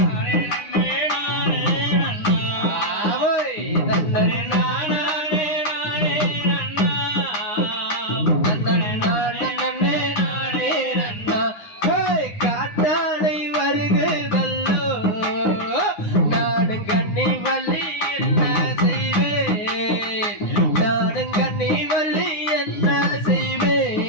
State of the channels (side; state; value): right; late; 9.6 ms